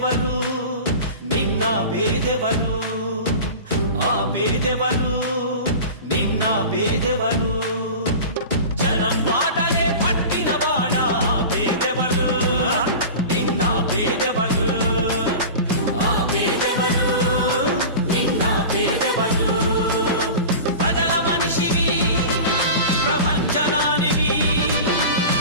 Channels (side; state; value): both; inverted; correlation -0.33